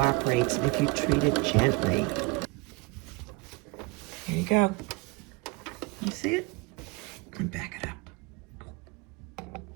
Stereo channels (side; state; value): left; quieter; 25.6 dB